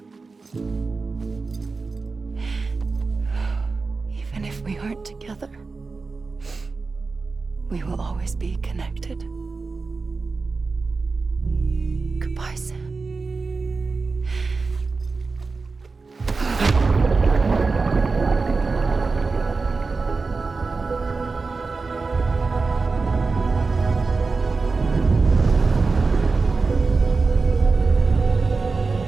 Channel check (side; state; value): left; quieter; 4.2 dB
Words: Even if we aren't together, we will always be connected. Goodbye, Sam.